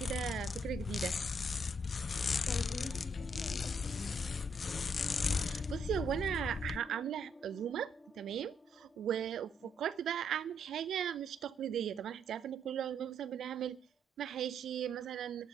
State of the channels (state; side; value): normal; both; correlation 0.73